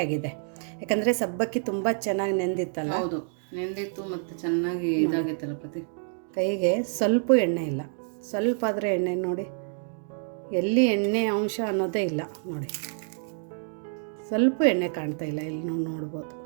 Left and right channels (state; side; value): silent; left; 60 dB below the other